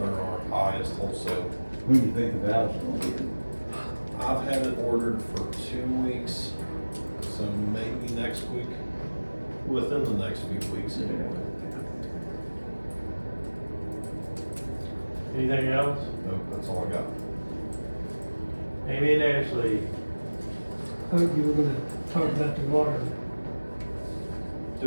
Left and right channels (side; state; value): both; inverted; correlation -1.00